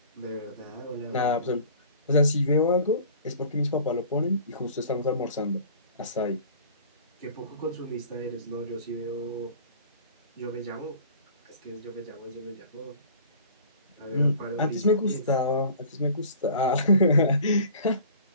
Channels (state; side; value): inverted; both; correlation -0.45